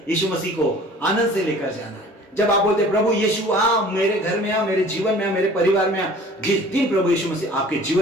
यीशु मसीह को आनंद से लेकर जाना है। जब आप बोलते प्रभु यीशु आ, मेरे घर में आ, मेरे जीवन में आ, मेरे परिवार में आ, जिस दिन प्रभु यीशु मसीह आपके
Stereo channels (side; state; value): both; normal; correlation 0.48